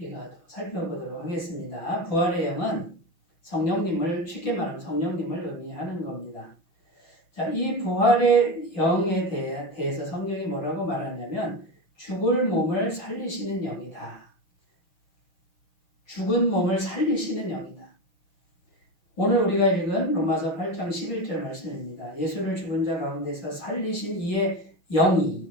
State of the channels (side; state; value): right; late; 5.9 ms